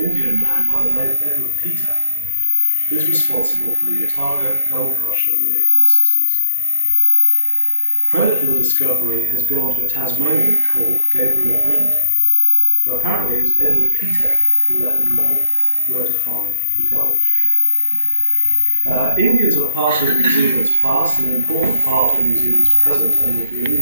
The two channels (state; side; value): inverted; both; correlation -0.76